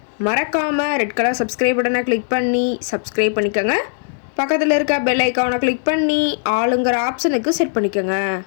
மறக்காமல் ரெட் கலர் சப்ஸ்கிரைப் பட்டனை கிளிக் பண்ணி சப்ஸ்கிரைப் பண்ணிக்கோங்க. பக்கத்தில் இருக்க பெல் ஐக்கானை கிளிக் பண்ணி ஆளுங்கிற ஆப்ஷனுக்கு செட் பண்ணிக்கோங்க.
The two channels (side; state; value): right; silent; 67 dB below the other